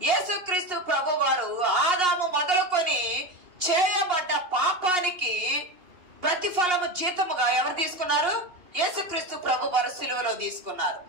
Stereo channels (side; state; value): left; late; 2.8 ms